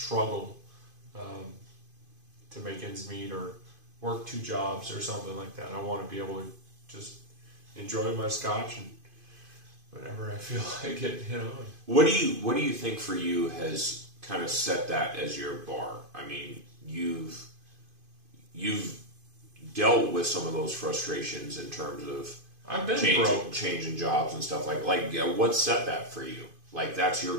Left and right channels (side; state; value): left; late; 2.5 ms